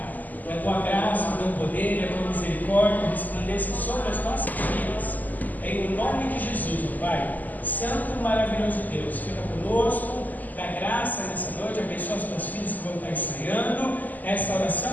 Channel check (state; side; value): late; right; 0.082 ms